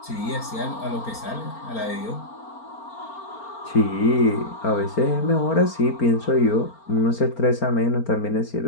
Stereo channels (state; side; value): late; right; 4.4 ms